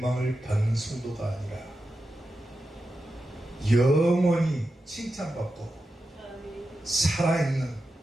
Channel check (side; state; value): both; normal; correlation 0.90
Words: 받는 성도가 아니라 영원히 칭찬받고 살아있는